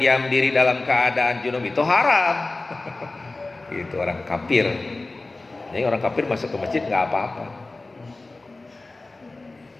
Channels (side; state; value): right; quieter; 3.2 dB